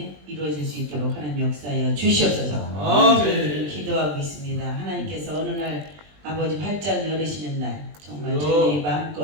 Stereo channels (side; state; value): left; late; 20 ms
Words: 이루어질 수 있도록 하나님 역사하여 주시옵소서. 저희들은 기도하고 있습니다. 하나님께서 어느 날 아버지 활짝 열으시는 날 정말 저희들이